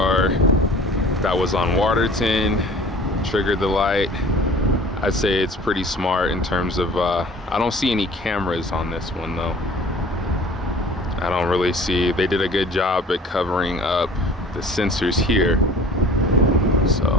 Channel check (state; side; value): normal; both; correlation 0.47